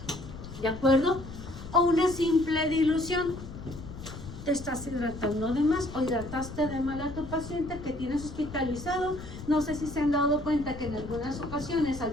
¿De acuerdo? O una simple dilución. Te estás hidratando de más o hidrataste de mal a tu paciente que tienes hospitalizado. No sé si se han dado cuenta que en algunas ocasiones al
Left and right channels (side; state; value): left; noise; rumble, 12 dB below the sound